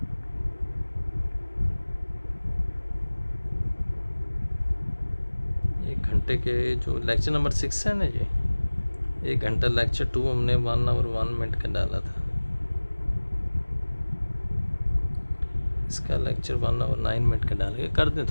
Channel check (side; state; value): both; inverted; correlation -1.00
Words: एक घंटे के जो लेक्चर नंबर 6 है ना, ये 1 घंटा लेक्चर 2 हमने 1 आवर 1 मिनट का डाला था, इसका लेक्चर 1 आवर 9 मिनट का डाल के कर दें